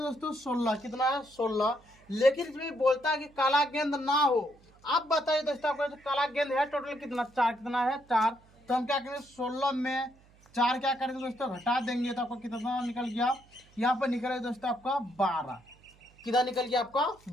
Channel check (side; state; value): right; noise; hum, 28 dB below the sound